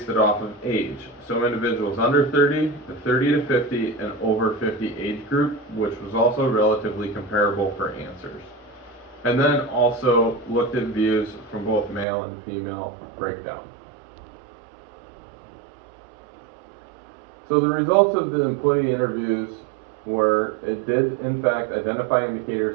it off of age. So individuals under 30, the 30 to 50, and over 50 age group, which was also relatively comparable for answers. And then also looked at views from both male and female breakdown. So the results of the employee interviews were, it did in fact identify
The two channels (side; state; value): left; drops out; at 12.1 s